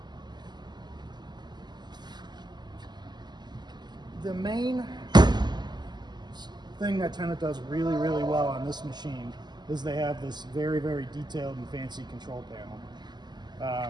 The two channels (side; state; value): left; late; 0.21 ms